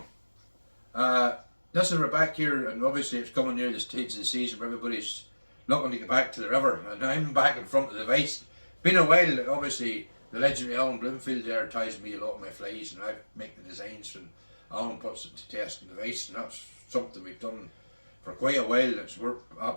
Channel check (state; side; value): inverted; both; correlation -1.00